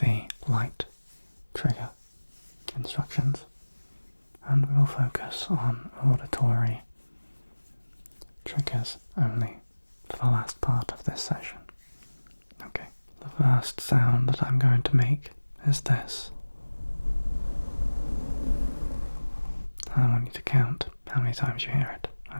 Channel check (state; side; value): inverted; both; correlation -1.00